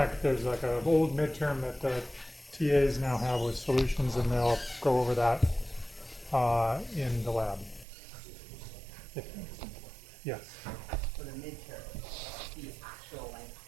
there's like an old midterm that the TAs now have with solutions, and they'll go over that in the lab. Yes. For the midterm, the actual length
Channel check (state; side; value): drops out; left; at 7.9 s